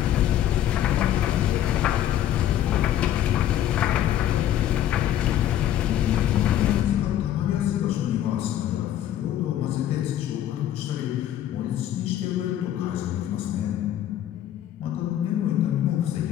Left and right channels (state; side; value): quieter; right; 11.6 dB